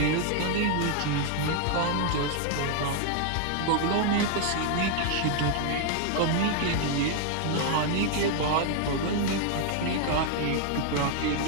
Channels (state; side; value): different; both; correlation 0.00